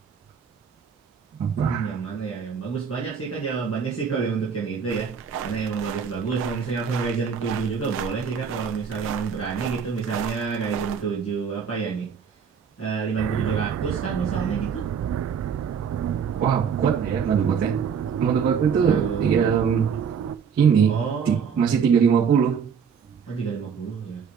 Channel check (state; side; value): quieter; left; 6.8 dB